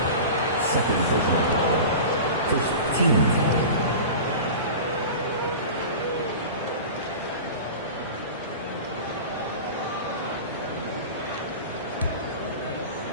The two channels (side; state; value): both; inverted; correlation -0.33